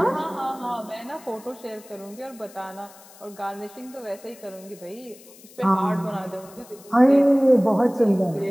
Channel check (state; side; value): noise; left; hiss, 22 dB below the sound